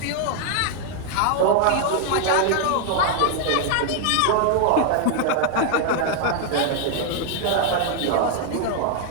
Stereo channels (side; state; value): both; different; correlation 0.00